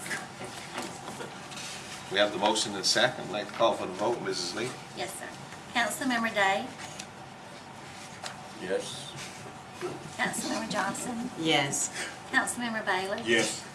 We have the motion and second. I'd like to call for the vote. Mrs. Lee? Yes, sir. Councilmember Day? Yes. Councilmember Johnson? Yes. Councilmember Bailey? Yes.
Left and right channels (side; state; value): both; identical; correlation 1.00